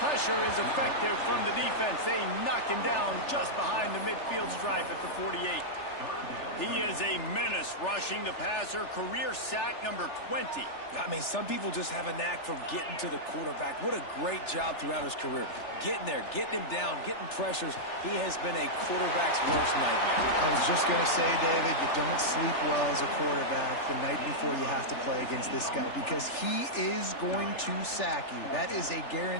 Pressure is effective from the defense. They knock him down just behind the midfield stripe at the 48. He is a menace rushing the passer. Career sack number 20. I mean, some people just have a knack for getting to the quarterback. What a great job throughout his career. Getting there, getting him down, getting pressures. He has been a quarterback's worst nightmare. I was just going to say, David, you don't sleep well as a quarterback the night before you have to play against this guy because he is going to sack you. That is a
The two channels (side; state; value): right; late; 3.4 ms